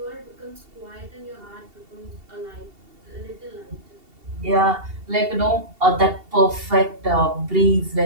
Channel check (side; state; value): left; late; 2.7 ms